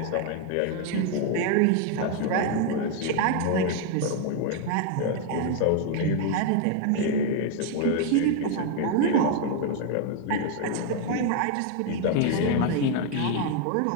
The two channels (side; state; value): both; different; correlation 0.01